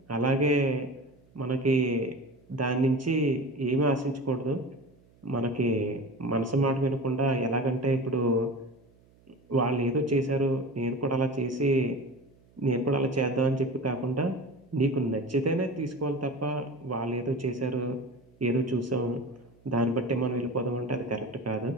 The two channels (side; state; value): right; noise; hum, 30 dB below the sound